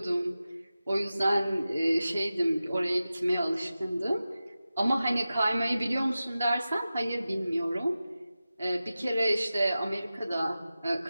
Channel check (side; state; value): both; inverted; correlation -0.94